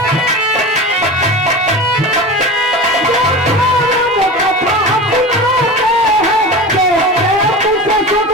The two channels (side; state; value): both; normal; correlation 0.30